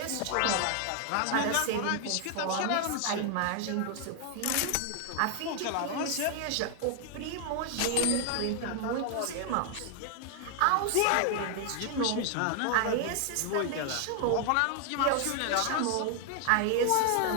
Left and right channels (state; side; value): different; both; correlation 0.00